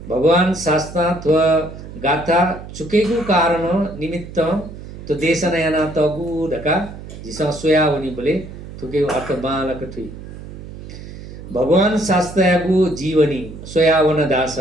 भगवान शास्त्र थ्व गाथा चुकेको कारण निमित्त तो देशना याना तगु दका जिसा सोया होनी बोले थुके अर्थ बालक थुइ भगवान शास्त्रगु जीवनी सोयावन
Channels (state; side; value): noise; right; hum, 13 dB below the sound